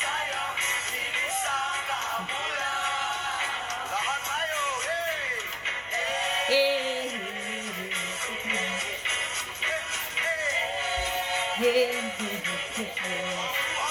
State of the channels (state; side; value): identical; both; correlation 1.00